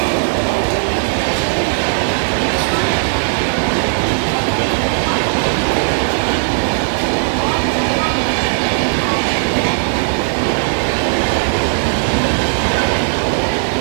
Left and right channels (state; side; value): silent; left; digital silence